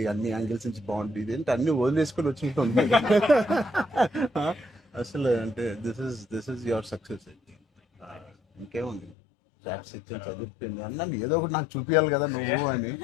అన్ని యాంగిల్స్ నుంచి బాగుంటుంది, అంటే అన్ని వదిలేసుకొని వచ్చినట్టు ఉంది. అసలు అంటే దిస్ ఇస్ యువర్ సక్సెస్. ఇంకేముంది, చాప్స్ ఇచ్చాను, చదివిపోయింది అన్నాను, ఏదో ఒకటి నాకు చూపించాలి కదా నువ్వు అని.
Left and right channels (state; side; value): drops out; right; at 9.2 s